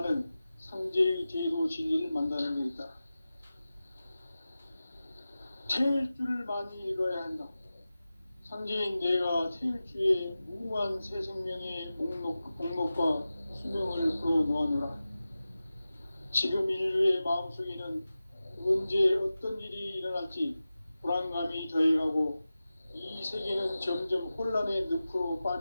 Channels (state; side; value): inverted; both; correlation -0.95